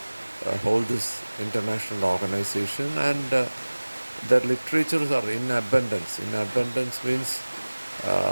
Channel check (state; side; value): inverted; both; correlation -1.00